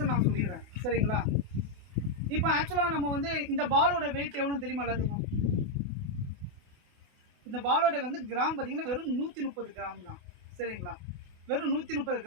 நான் சொல்லிடுறேன். சரிங்களா? இப்போ ஆக்சுவலாக நம்ம வந்து இந்த பாலோட வெயிட் எவ்வளோன்னு தெரியுமா எல்லாத்துக்கும்? இந்த பாலோட வந்து கிராம் பார்த்தீங்கன்னா வெறும் 130 கிராம் தான். சரிங்களா? வெறும் 130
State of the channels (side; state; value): left; late; 28 ms